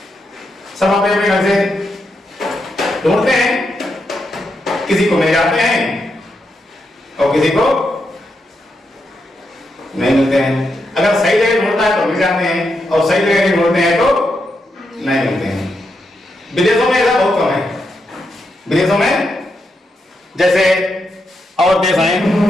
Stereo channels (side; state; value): both; normal; correlation 0.83